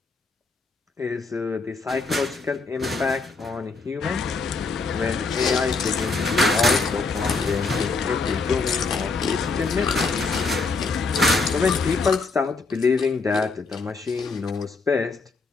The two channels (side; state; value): right; quieter; 4.1 dB